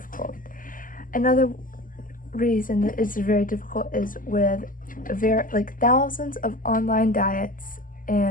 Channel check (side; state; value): right; late; 0.40 ms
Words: Another reason that it's very difficult is with thousands of online diets